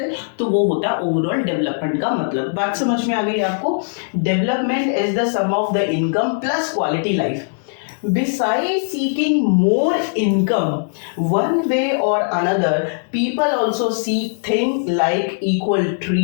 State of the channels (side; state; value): right; silent; digital silence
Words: तो वो होता है ओवरऑल डेवलपमेंट का मतलब। बात समझ में आ गई आपको। Development is the sum of the income plus quality life. Besides seeking more income, one way or another, people also seek things like equal